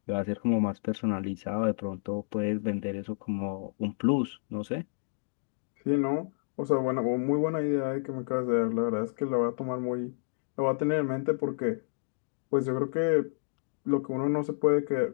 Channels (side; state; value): right; silent; digital silence